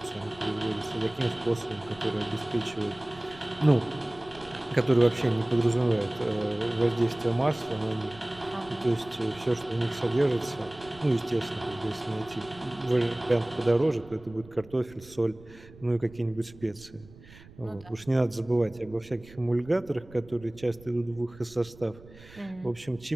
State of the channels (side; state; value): right; noise; rumble, 21 dB below the sound